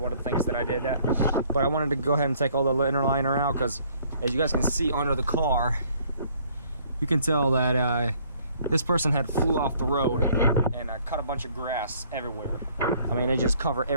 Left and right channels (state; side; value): inverted; both; correlation -0.61